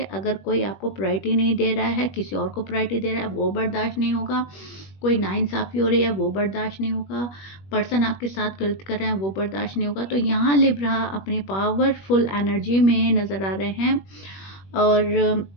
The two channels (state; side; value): late; right; 21 ms